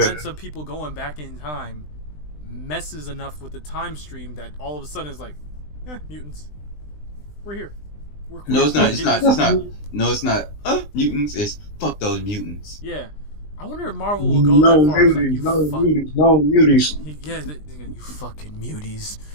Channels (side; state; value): right; late; 20 ms